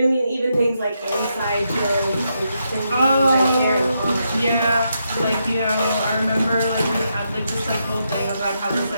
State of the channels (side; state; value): both; inverted; correlation -0.82